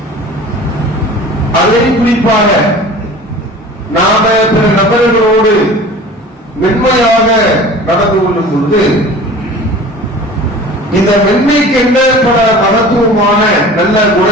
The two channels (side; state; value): both; normal; correlation 0.41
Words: அதை குறிப்பாக நாம பிற நபர்களோடு மென்மையாக நடந்து கொள்ளும் பொழுது, இந்த மென்மைக்கு என்ன பல மகத்துவமான நல்ல